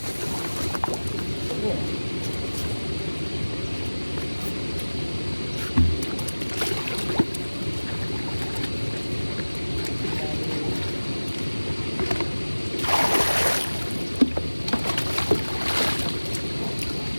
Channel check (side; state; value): both; inverted; correlation -1.00